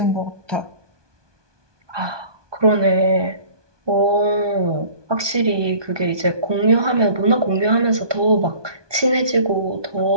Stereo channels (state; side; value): late; left; 1.2 ms